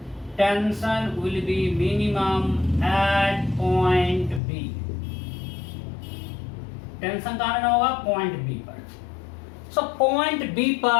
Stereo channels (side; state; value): right; drops out; at 4.4 s